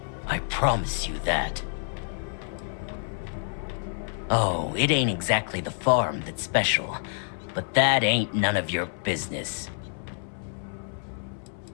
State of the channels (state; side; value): silent; right; 60 dB below the other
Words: I promise you that. Oh, it ain't exactly the farm that's special, but that ain't none of your business.